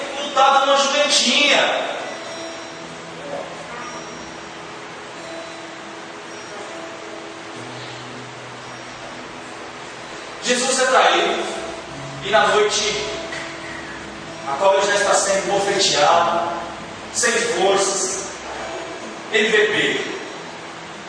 montado numa jumentinha. Jesus é traído, e na noite a qual ele já está sendo bofeteado, sem forças, ele vê Pedro.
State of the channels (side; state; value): both; identical; correlation 1.00